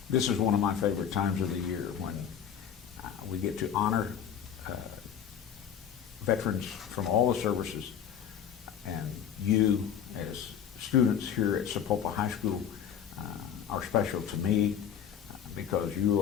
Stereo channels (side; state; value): right; quieter; 8.6 dB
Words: This is one of my favorite times of the year when we get to honor veterans from all the services, and you as students here at Sapulpa High School are special to me because you